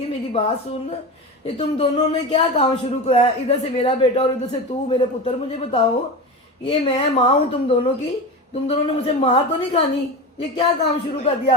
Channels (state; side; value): normal; both; correlation 0.26